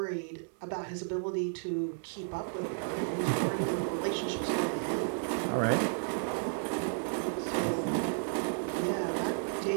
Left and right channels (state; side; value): silent; left; digital silence